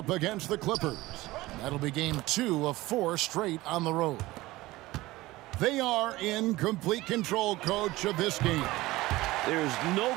against the Clippers. That'll be game 2 of 4 straight on the road. They are in complete control, coach, of this game. There's no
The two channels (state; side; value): quieter; left; 18.7 dB